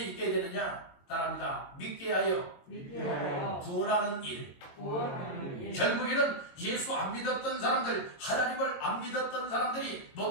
되느냐? 따라합니다. 믿게 하여 믿게 하여 구원하는 일. 구원하는 일. 결국에는 예수 안 믿었던 사람들, 하나님을 안 믿었던 사람들이, 못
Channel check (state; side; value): late; right; 22 ms